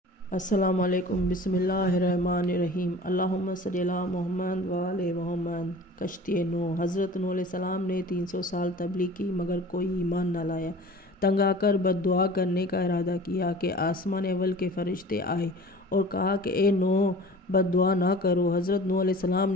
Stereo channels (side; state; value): both; normal; correlation 0.42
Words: السلام علیکم۔ بسم اللہ الرحمن الرحیم۔ اللہم صلی علی محمد و آل محمد۔ کشتی نوح۔ حضرت نوح علیہ السلام نے 300 سال تبلیغ کی مگر کوئی ایمان نہ لایا۔ تنگ آ کر بد دعا کرنے کا ارادہ کیا کہ آسمان اول کے فرشتے آئے اور کہا کہ اے نوح، بد دعا نہ کرو۔ حضرت نوح علیہ السلام